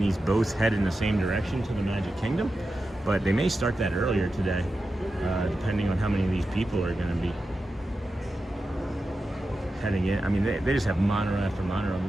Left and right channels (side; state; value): both; normal; correlation 0.91